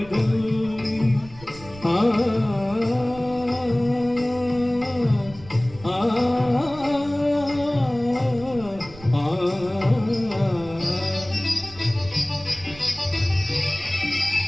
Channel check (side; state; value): right; noise; rumble, 19 dB below the sound